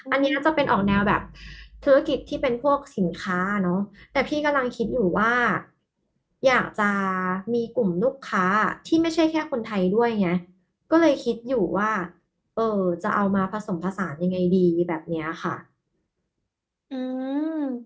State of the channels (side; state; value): both; identical; correlation 1.00